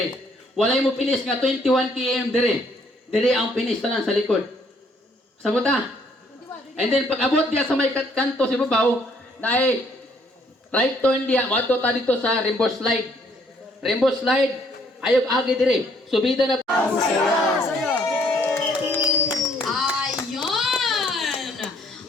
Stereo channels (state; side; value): normal; both; correlation 0.65